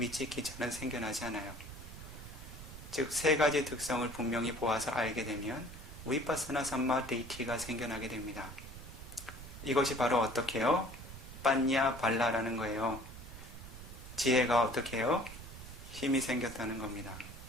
생겨나지 않아요. 즉 세 가지 특성을 분명히 보아서 알게 되면 위파사나 삼마디티가 생겨나게 됩니다. 이것이 바로 어떻게 해요? 빠냐 발라라는 거예요. 지혜가 어떻게 해요? 힘이 생겼다는 겁니다.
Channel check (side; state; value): right; noise; rumble, 13 dB below the sound